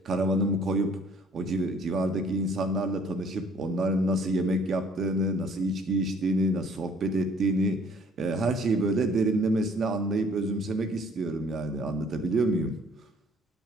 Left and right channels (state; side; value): normal; both; correlation 0.57